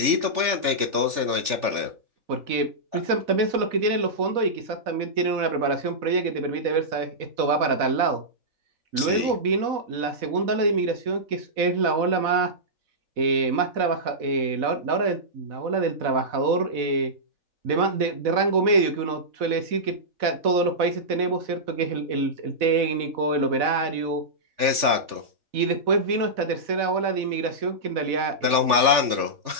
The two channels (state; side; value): late; left; 3.4 ms